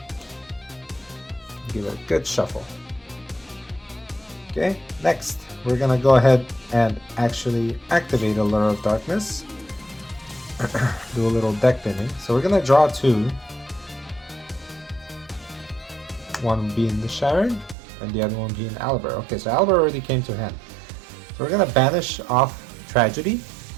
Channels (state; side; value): drops out; left; at 17.8 s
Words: Give it a good shuffle. Okay, next we're gonna go ahead and actually activate Allure of Darkness. Do a little deck binning. So we're gonna draw 2. One being the Sharon and the other one being Aliber. Okay, so Aliber already came to hand. So we're gonna banish off Tragedy.